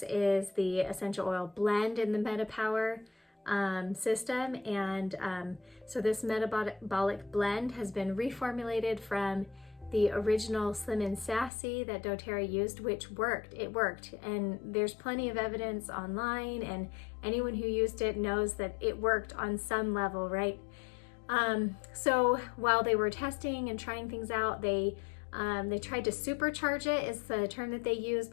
is the essential oil blend in the MetaPWR system. And so this metabolic blend has been reformulated from the original Slim and Sassy that doTERRA used, which worked. It worked, and there's plenty of evidence online, and anyone who used it knows that it worked on some level, right? So while they were testing and trying things out, they tried to supercharge it, is the term that they use,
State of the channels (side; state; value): right; drops out; at 11.5 s